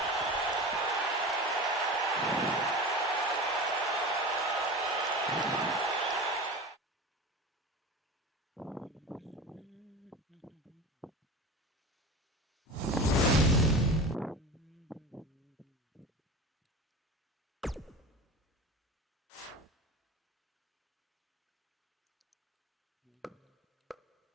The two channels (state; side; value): normal; both; correlation 0.32